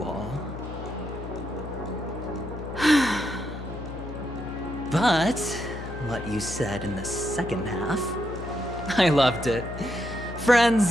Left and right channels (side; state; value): left; noise; hum, 10 dB below the sound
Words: all. But what you said in the second half, I loved it.